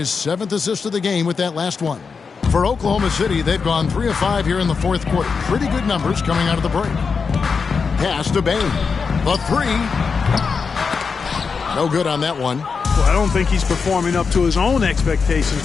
7th assist of the game with that last one. For Oklahoma City, they've gone 3 of 5 here in the fourth quarter. Pretty good numbers coming out of the break. Pass to Bane. The three. No good on that one. Well, I don't think he's performing up to his own expectations,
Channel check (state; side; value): quieter; right; 5.3 dB